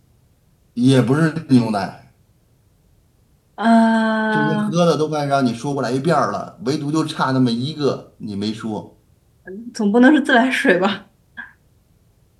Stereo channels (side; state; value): both; identical; correlation 1.00